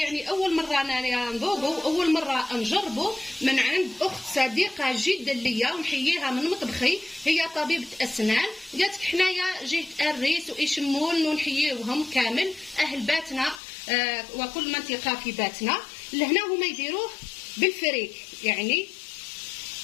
اول مره انا نذوقه، اول مره نجربه من عند اخت صديقه جدا ليا ونحييها من مطبخي، هي طبيبه اسنان. قالت حنايا جهه الريس وإيشمون ونحييوهم كامل اهل باتنا وكل منطقه في باتنا. لهنا هما يديروه بالفريك، يعني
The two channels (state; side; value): drops out; right; at 13.6 s